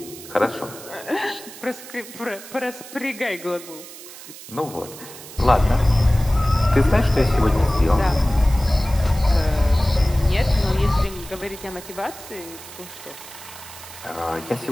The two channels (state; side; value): noise; right; hiss, 15 dB below the sound